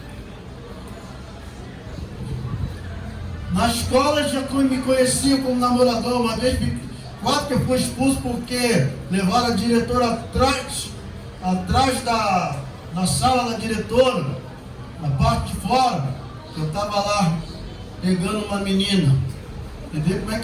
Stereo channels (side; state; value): both; identical; correlation 1.00